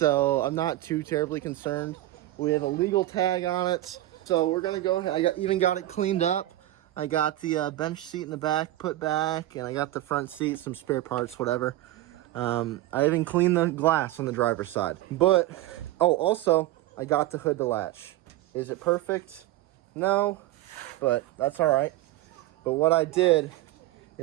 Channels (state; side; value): quieter; left; 15.5 dB